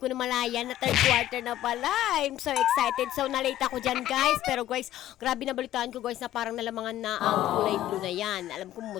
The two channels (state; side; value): quieter; right; 13.1 dB